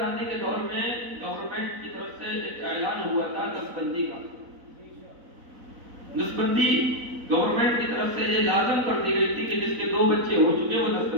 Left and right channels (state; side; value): late; left; 4.0 ms